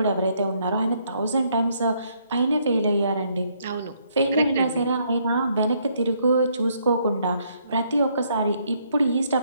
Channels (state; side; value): inverted; both; correlation -0.70